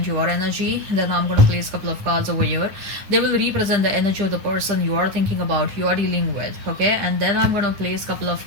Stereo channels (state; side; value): late; left; 9.9 ms